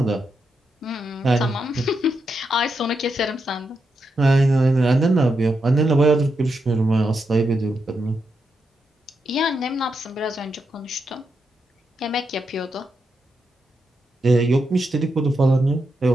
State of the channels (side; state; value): both; normal; correlation 0.84